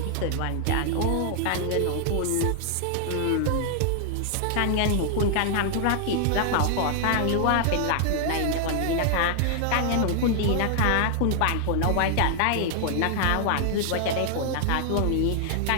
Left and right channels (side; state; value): both; different; correlation 0.00